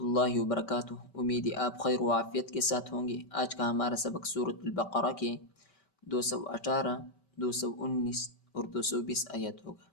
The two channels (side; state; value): right; late; 5.2 ms